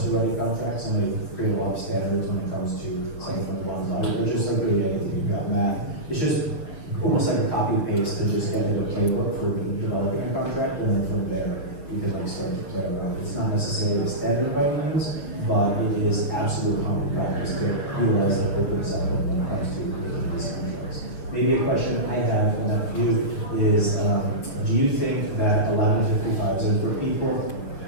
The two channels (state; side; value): late; right; 6.8 ms